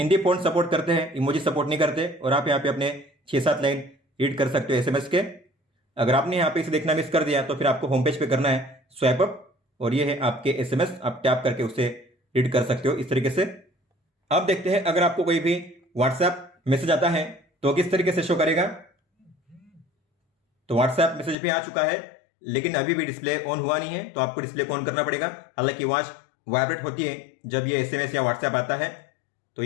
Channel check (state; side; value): drops out; right; at 21.4 s